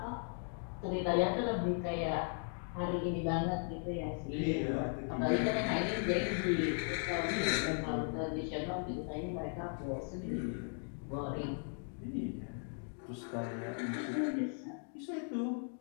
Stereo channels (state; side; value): silent; right; 53 dB below the other